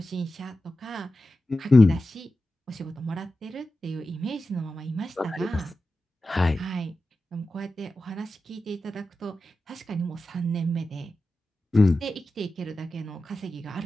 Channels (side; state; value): both; normal; correlation 0.93